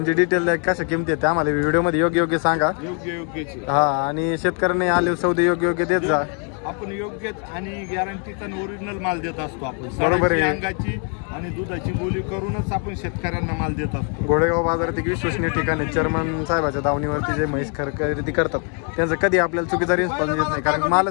डिटेल द्या, कशा किमती आहेत आम्हाला व्हिडिओमध्ये योग्य सांगा. योग्य हा, आणि शेतकऱ्यांनी आले सौदे योग्य देत जा. आपण योग्य आणि गॅरंटीचा ओरिजिनल माल देत असतो. आपण बरोबर आहे. अंगाची आणि दुधाची बोली करूनच आपण शेतकऱ्यांना माल देत असतो. घोडेगाव बाजारात एक विश्वसनीय ठिकाण आहे. चेअरमन साहेबाच्या दावणीवरती जे म्हैस खरेदी करतात त्यांचं कधी आपल्याला चुकीचा रिस्पॉन्स येत नाही, कारण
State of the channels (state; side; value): quieter; right; 39.6 dB